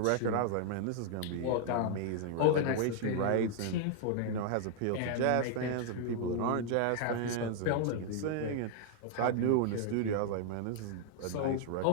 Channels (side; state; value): both; different; correlation 0.00